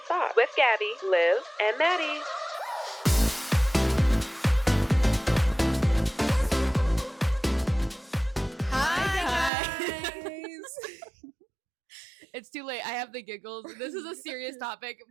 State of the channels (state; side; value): drops out; left; at 9.5 s